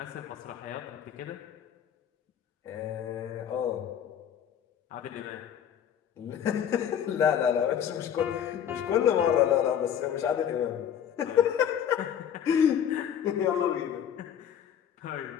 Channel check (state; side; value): quieter; right; 9.1 dB